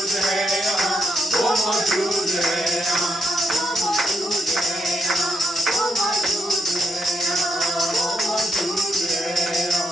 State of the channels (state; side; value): normal; both; correlation 0.79